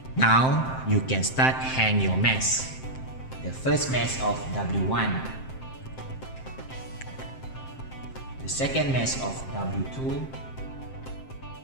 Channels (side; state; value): right; late; 7.6 ms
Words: Now you can start hang your mesh. The first mesh of W1, the second mesh of W2,